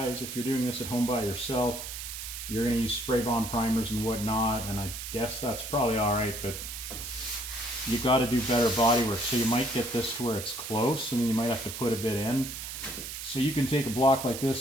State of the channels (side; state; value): right; noise; hiss, 8 dB below the sound